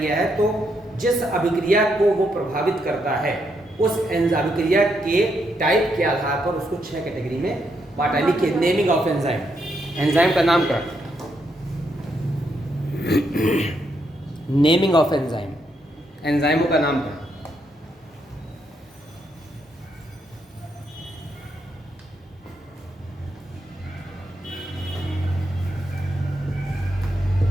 है। तो जिस अभिक्रिया को वो प्रभावित करता है उस अभिक्रिया के टाइप के आधार पर उसको 6 कैटेगरी में बांटा। लिखिए, नेमिंग ऑफ एंजाइम, एंजाइम का नामकरण, नेमिंग ऑफ एंजाइम, एंजाइमों का नामकरण।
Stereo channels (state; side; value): normal; both; correlation 0.78